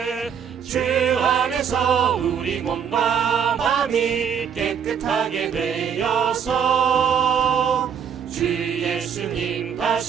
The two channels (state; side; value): quieter; left; 7.6 dB